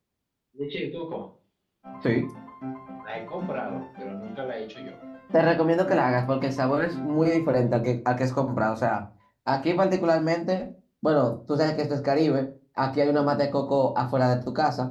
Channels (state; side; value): identical; both; correlation 1.00